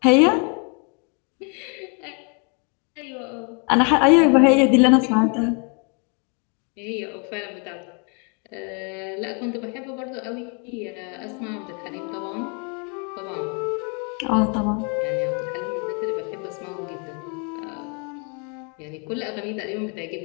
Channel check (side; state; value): right; quieter; 36.9 dB